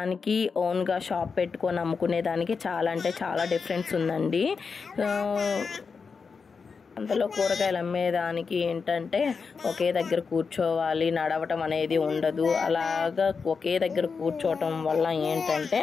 ఓన్గా షాప్ పెట్టుకొని అమ్ముకునేదానికి చాలా అంటే చాలా డిఫరెన్స్ ఉందండి. అంతలో కూరగాయలు అమ్మేదానికి ఏంటంటే ఒకే దగ్గర కూర్చోవాలి, నడవటం అనేది ఉండదు. అలాగా ఒకే దగ్గర కూర్చోవటం వల్ల ఏంటంటే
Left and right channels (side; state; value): right; quieter; 5.3 dB